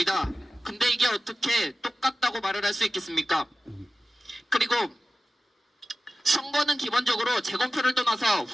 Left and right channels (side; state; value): both; normal; correlation 0.95